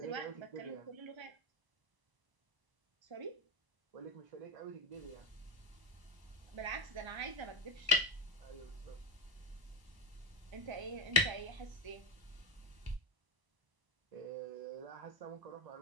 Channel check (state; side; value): late; left; 1.0 ms